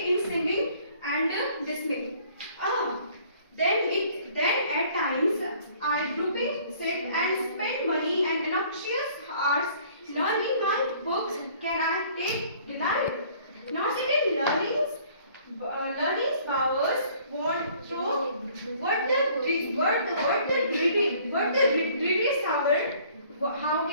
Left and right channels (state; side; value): inverted; both; correlation -0.56